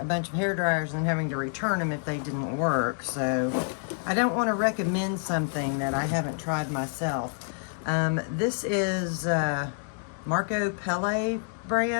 bunch of hair dryers and having to return them if they didn't work. So I don't want to recommend something that I haven't tried myself. This is Marco Pelle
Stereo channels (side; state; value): right; silent; 59 dB below the other